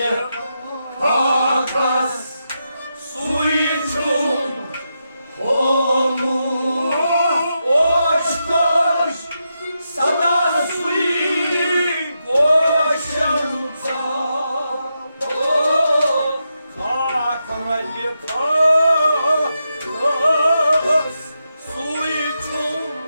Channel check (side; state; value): both; inverted; correlation -0.85